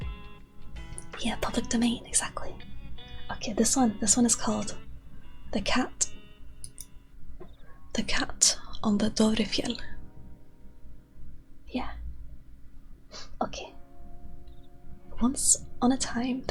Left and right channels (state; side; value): identical; both; correlation 1.00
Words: Yeah, public domain, exactly. Okay, this one is called The Cat. The Cat on the Dovrefjell. Yeah. Okay. Once on a time,